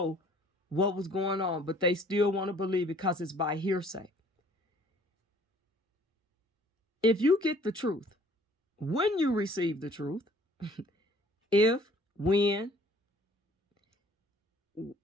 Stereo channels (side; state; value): both; normal; correlation 0.56